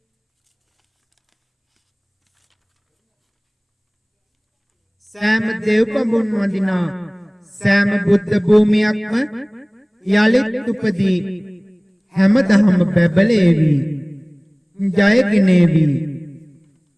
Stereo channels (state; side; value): identical; both; correlation 1.00